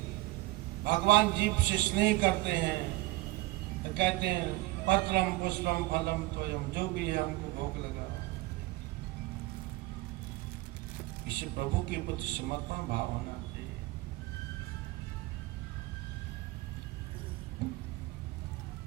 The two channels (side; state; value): left; quieter; 20.1 dB